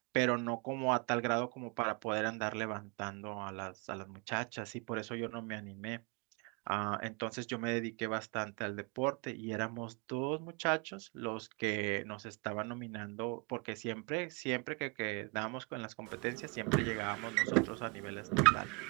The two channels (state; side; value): quieter; left; 30.6 dB